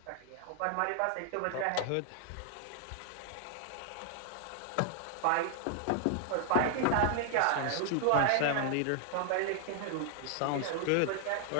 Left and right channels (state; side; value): different; both; correlation 0.00